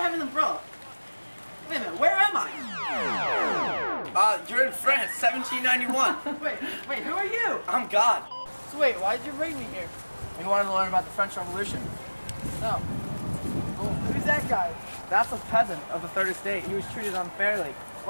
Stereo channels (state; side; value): inverted; both; correlation -1.00